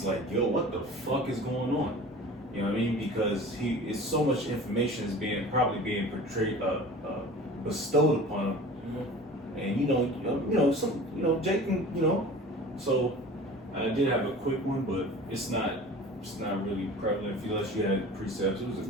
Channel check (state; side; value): normal; both; correlation 0.40